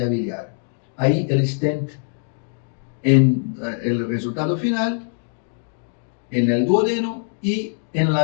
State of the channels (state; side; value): silent; right; digital silence